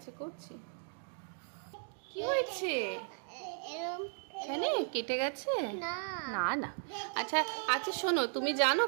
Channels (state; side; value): silent; left; digital silence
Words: করছি। কি হয়েছে? এরম এখানে কেটে গেছে? না না না। আচ্ছা আচ্ছা, শোনো, তুমি জানো